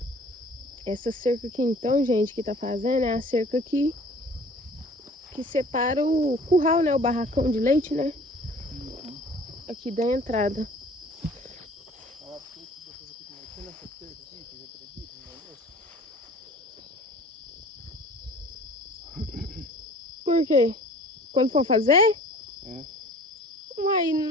Essa cerca aqui, então, gente, que tá fazendo é a cerca que separa o curral, né? O barracão de leite, né? Aqui da entrada. Por quê? Quando for fazer? É.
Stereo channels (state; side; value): normal; both; correlation 0.48